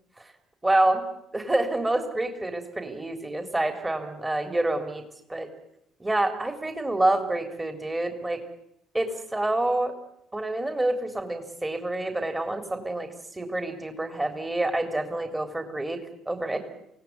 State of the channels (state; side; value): normal; both; correlation 0.96